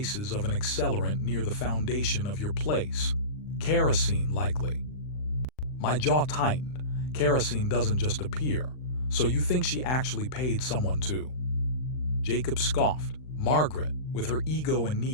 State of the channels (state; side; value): late; right; 39 ms